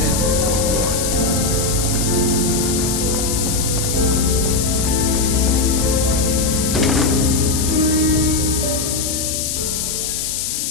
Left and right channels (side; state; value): left; noise; hiss, 2 dB below the sound